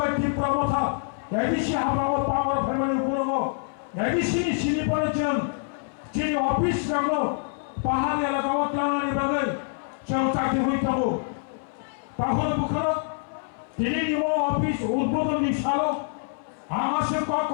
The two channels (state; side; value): silent; right; 58 dB below the other